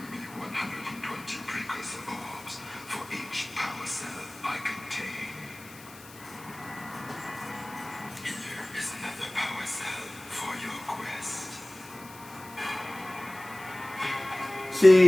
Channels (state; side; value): noise; left; hiss, 19 dB below the sound